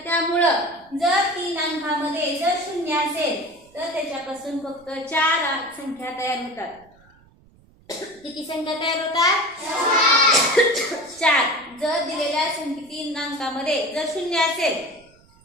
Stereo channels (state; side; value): noise; right; rumble, 29 dB below the sound